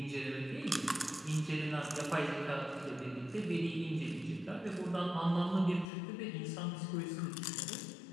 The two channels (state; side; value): drops out; right; at 5.9 s